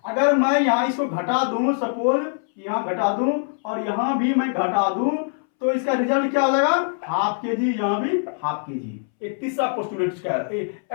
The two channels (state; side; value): silent; right; 64 dB below the other